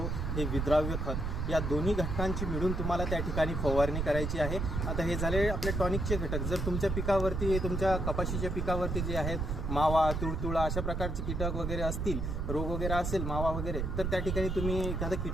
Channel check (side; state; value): right; noise; rumble, 1 dB below the sound